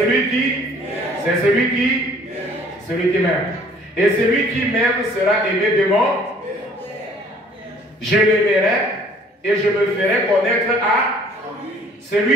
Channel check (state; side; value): normal; both; correlation 0.56